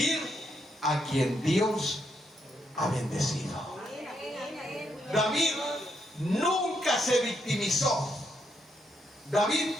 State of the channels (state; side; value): normal; both; correlation 0.78